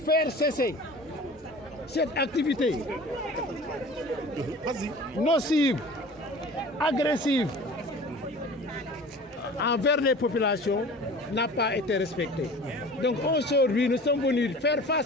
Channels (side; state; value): both; normal; correlation 0.41